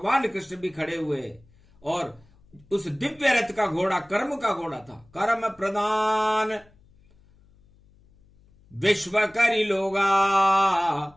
कृष्ण भी खड़े हुए, और उस दिव्य रथ का घोड़ा कर्म का घोड़ा था। कर्म प्रदान विश्व करी लोगा,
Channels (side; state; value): left; noise; hum, 30 dB below the sound